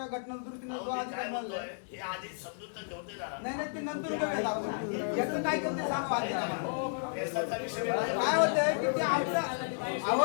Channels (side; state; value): right; silent; 56 dB below the other